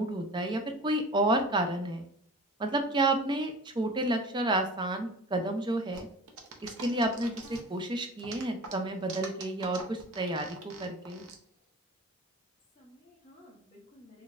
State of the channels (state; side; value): normal; both; correlation 0.38